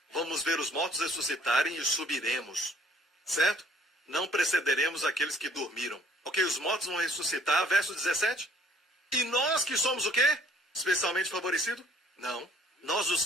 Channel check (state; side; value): normal; both; correlation 0.59